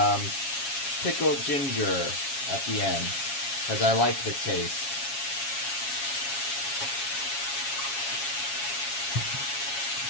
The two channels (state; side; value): late; right; 7.3 ms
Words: pickled ginger at the end, because I like the taste.